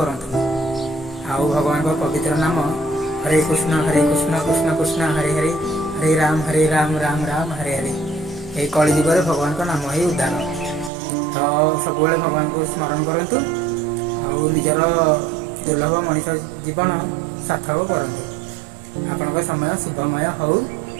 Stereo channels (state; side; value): drops out; left; at 10.9 s